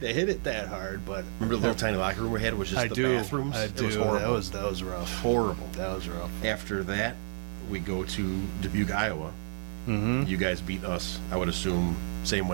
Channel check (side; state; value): left; silent; digital silence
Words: to hit it that hard. But remember the little tiny locker room we had, which is the bathrooms? I do. It was horrible. That was rough. Horrible. That was rough. After that, we go to Dubuque, Iowa. Mm-hmm. You guys beat us, I would assume, same